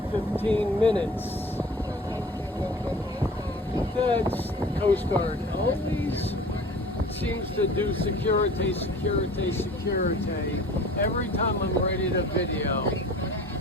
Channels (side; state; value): both; normal; correlation 0.44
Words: 15 minutes. That's Coast Guard. Always seems to do security every time I'm ready to video.